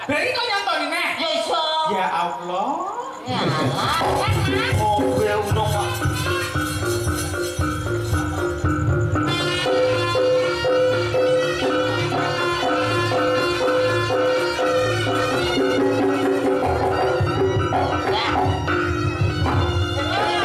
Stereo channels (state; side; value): identical; both; correlation 1.00